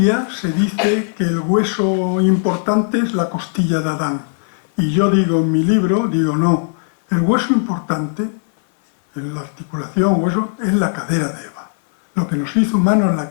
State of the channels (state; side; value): silent; right; 57 dB below the other